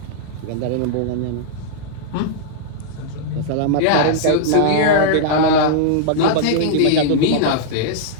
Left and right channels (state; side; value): different; both; correlation -0.02